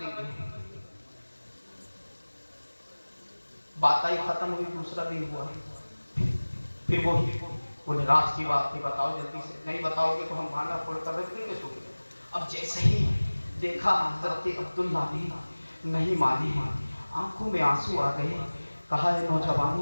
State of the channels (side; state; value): both; inverted; correlation -1.00